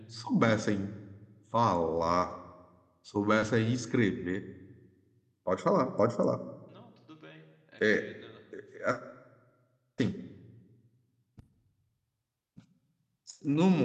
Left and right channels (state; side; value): identical; both; correlation 1.00